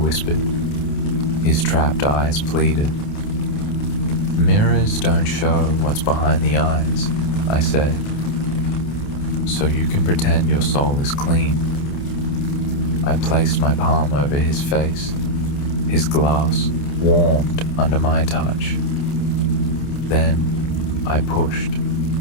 His trapped eyes pleaded. "Mirrors don't show what's behind the eyes," I said. "So you can pretend your soul is clean." I placed my palm over his face. His glass warmed under my touch. Then I pushed.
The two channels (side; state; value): right; late; 28 ms